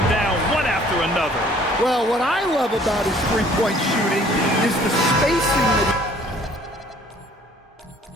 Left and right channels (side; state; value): both; normal; correlation 0.56